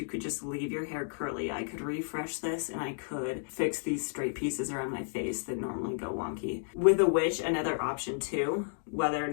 could just leave your hair curly. I could refresh this and I could fix these straight pieces around my face that normally go wonky. With a witch, another option too, whether or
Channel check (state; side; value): silent; right; digital silence